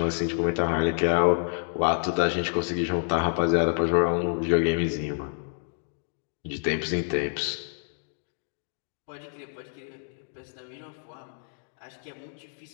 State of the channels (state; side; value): silent; right; digital silence